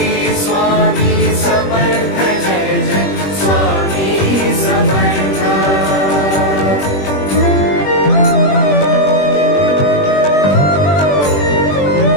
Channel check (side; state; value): right; late; 21 ms